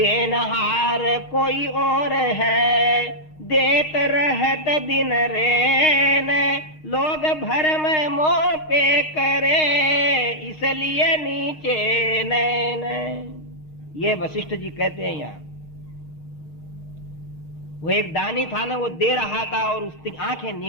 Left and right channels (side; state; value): right; late; 6.5 ms